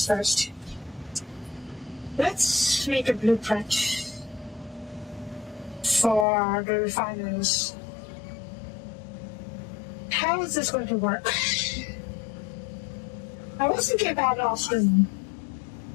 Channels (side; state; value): right; drops out; at 6.2 s